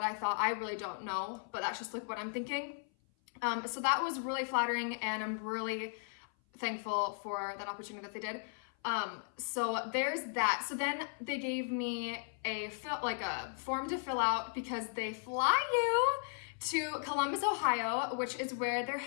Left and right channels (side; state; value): right; silent; 54 dB below the other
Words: I thought. I really don't know, but that's just like what I'm thinking. So that was really flattering, and I'm really thankful for that opportunity that they did. So there's that. So then they gave me a form to fill out, because they fly you to Columbus, Ohio, which is where their